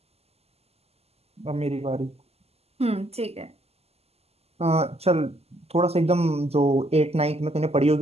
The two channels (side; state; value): left; late; 0.29 ms